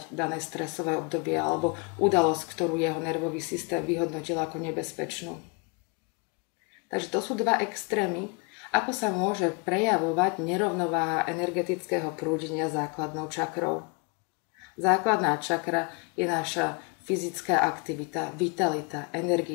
dané stresové obdobie alebo udalosť, ktorú jeho nervový systém vyhodnotil ako nebezpečnú. Takže to sú dva extrémy, ako sa môže prejavovať nerovnováha energetického prúdenia základnou čakrou. Základná čakra je naša fyzická aktivita, vitalita,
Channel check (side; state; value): right; quieter; 32.7 dB